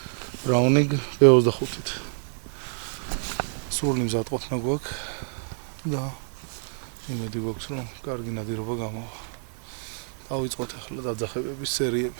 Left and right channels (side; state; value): left; silent; digital silence